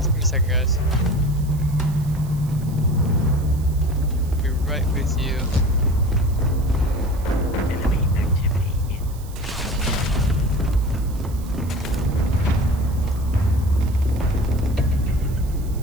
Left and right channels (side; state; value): right; noise; hiss, 21 dB below the sound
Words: Give me a second, guys. I'll be right with you. Enemy activity in.